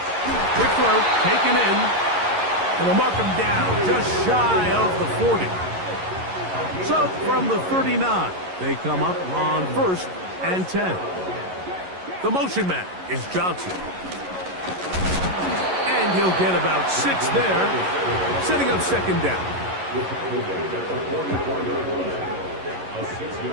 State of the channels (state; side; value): late; left; 11 ms